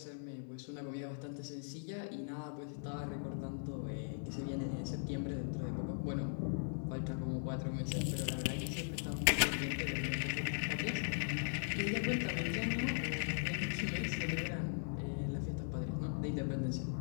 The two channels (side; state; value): right; silent; 51 dB below the other